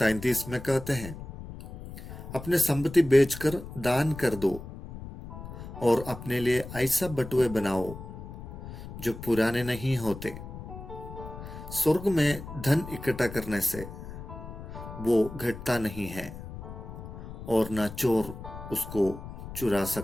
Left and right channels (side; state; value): left; noise; rumble, 12 dB below the sound